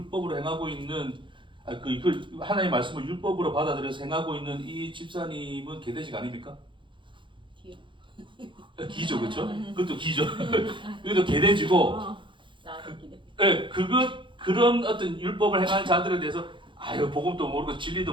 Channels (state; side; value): late; left; 0.24 ms